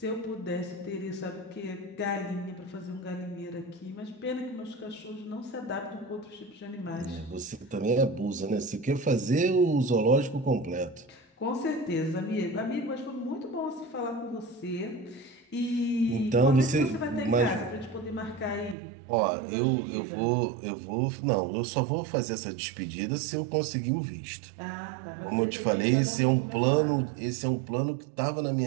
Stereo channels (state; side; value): drops out; left; at 18.8 s